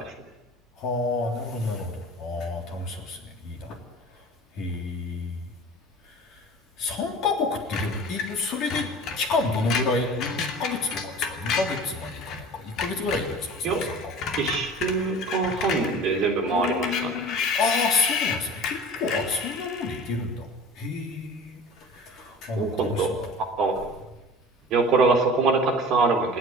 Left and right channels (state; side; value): normal; both; correlation 0.40